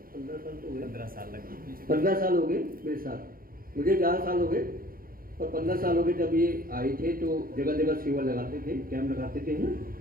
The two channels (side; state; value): left; late; 0.42 ms